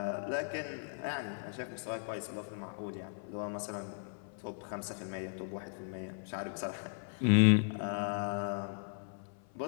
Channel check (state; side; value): silent; right; 53 dB below the other